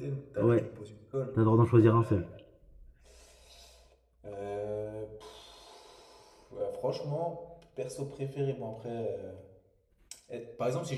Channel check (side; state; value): both; identical; correlation 1.00